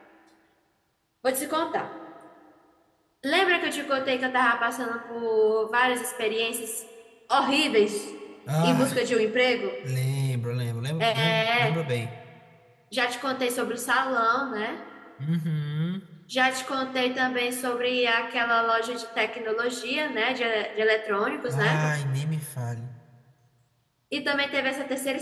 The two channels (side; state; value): both; identical; correlation 1.00